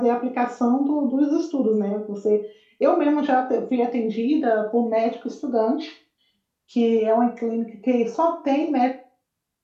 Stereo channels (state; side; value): identical; both; correlation 1.00